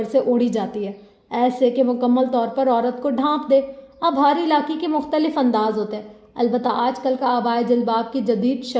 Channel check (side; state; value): both; identical; correlation 1.00